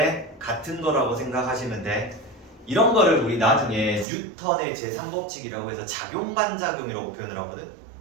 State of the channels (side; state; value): left; drops out; at 4.0 s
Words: 같은 거라고 생각하시면 돼. 이런 거를 우리 나중에 뉴턴의 제3법칙이라고 해서 작용반작용이라고 표현을 하거든.